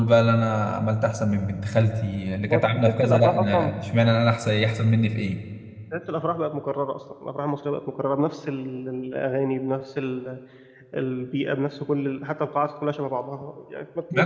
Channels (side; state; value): both; identical; correlation 1.00